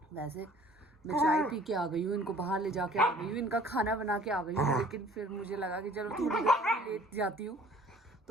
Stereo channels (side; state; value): both; normal; correlation 0.52